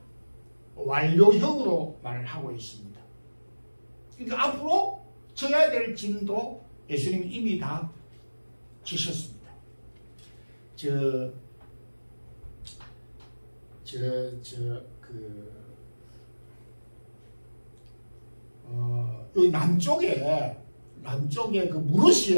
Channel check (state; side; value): inverted; both; correlation -1.00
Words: 완료형으로 말을 하고 있습니다. 그러니까 앞으로 져야 될 짐도 예수님이 이미 다 지셨습니다. 여기 남쪽에 그